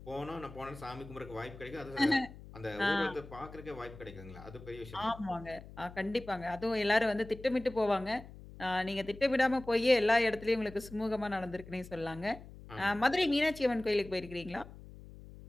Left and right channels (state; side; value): noise; left; hum, 16 dB below the sound